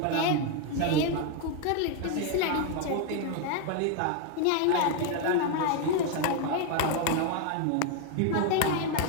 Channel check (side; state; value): both; different; correlation 0.01